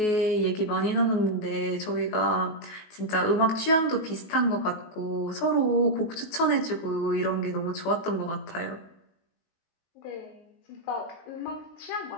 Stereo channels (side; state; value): right; late; 19 ms